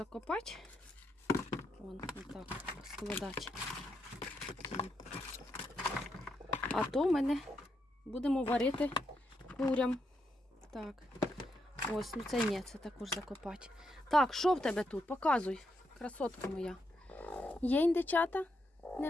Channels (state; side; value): normal; both; correlation 0.81